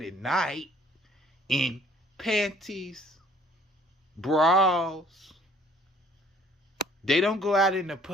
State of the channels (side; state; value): both; normal; correlation 0.57